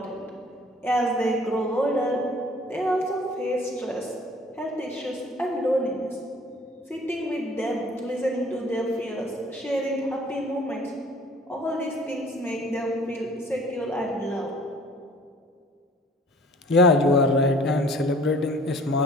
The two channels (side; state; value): both; normal; correlation 0.52